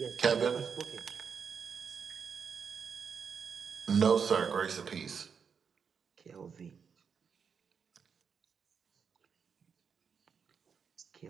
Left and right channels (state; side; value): quieter; left; 6.4 dB